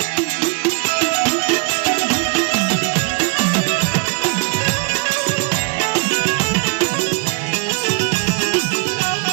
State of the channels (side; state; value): left; quieter; 32.2 dB